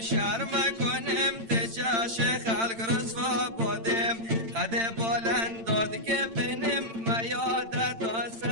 شرم کنم تجاش خلق رسوا بودم قد بلند داد که بنم میادت تا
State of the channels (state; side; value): late; left; 8.9 ms